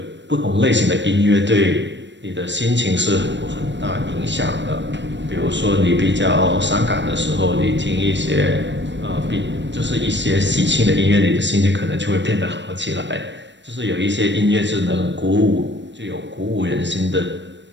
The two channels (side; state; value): left; late; 0.53 ms